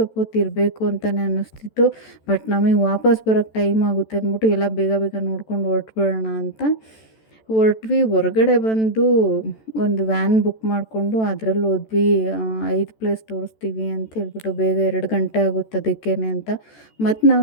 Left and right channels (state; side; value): late; right; 14 ms